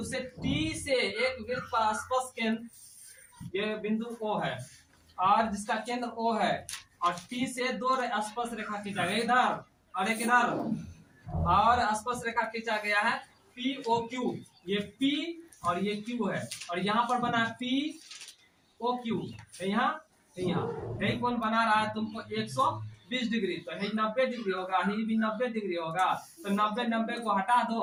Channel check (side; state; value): both; identical; correlation 1.00